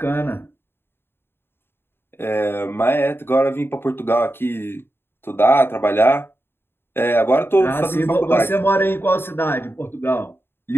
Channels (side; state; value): right; late; 0.11 ms